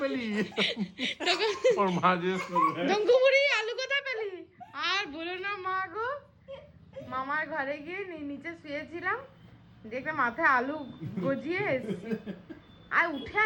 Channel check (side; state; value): both; identical; correlation 1.00